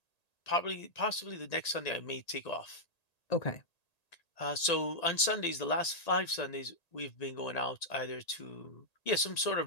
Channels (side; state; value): right; late; 1.8 ms